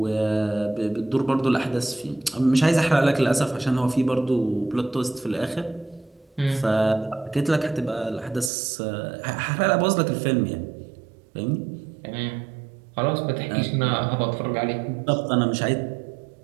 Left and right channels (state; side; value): drops out; left; at 8.5 s